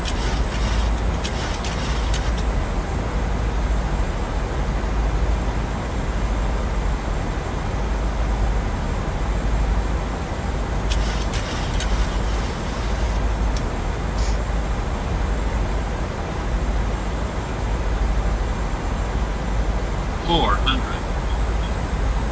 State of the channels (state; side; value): identical; both; correlation 1.00